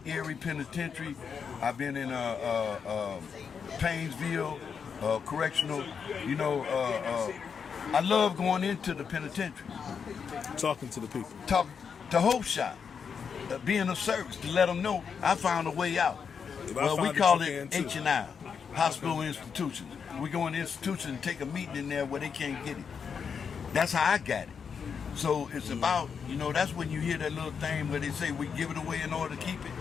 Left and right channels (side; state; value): right; quieter; 6.5 dB